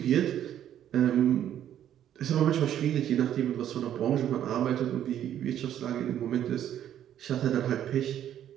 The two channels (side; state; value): left; quieter; 10.7 dB